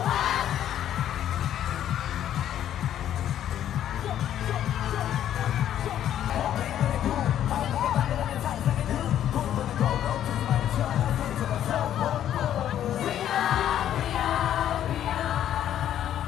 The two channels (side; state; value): right; quieter; 11.0 dB